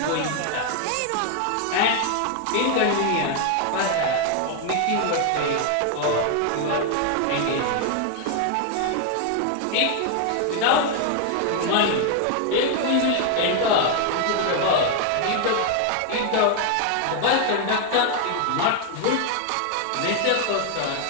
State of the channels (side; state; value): both; different; correlation 0.00